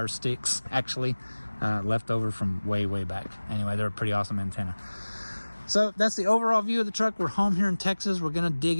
sticks actually left over from way back. Anyway, they're a pretty awesome antenna. So that's the overall view of the truck. We're home here in Texas. We're going to dig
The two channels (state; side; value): inverted; both; correlation -1.00